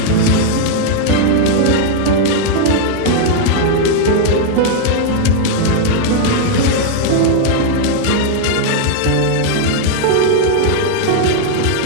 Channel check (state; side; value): different; both; correlation -0.01